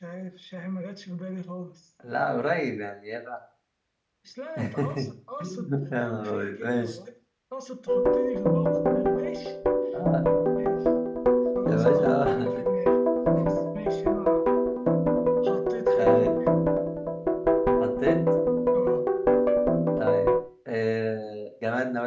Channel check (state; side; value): identical; both; correlation 1.00